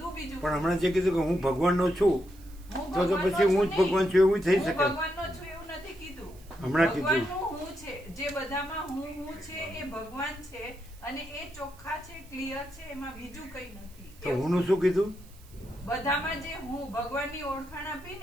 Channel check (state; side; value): noise; right; hiss, 25 dB below the sound